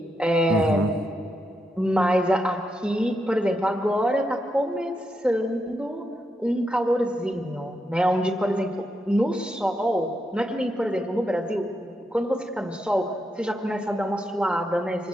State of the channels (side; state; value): both; normal; correlation 0.83